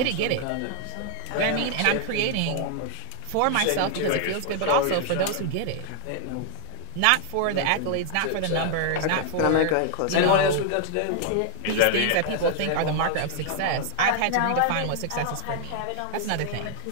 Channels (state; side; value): different; both; correlation 0.00